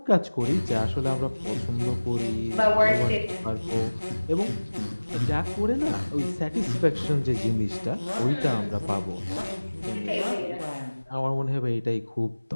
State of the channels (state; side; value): inverted; both; correlation -1.00